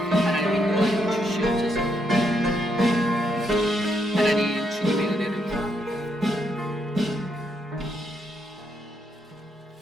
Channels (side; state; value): both; normal; correlation 0.77